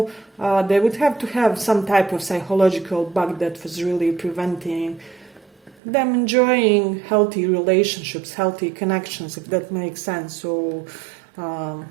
they would have to have some type of psychological bug that was really preventing them enjoying healthy relationships, healthy connections, if that makes sense. So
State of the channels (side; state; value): left; drops out; at 5.8 s